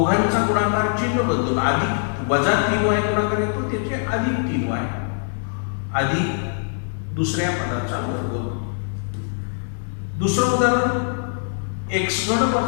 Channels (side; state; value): right; silent; digital silence